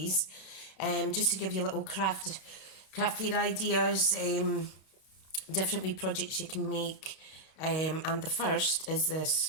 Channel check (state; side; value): late; right; 32 ms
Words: just to give you little craft fair ideas, different wee projects you can make, and the first is this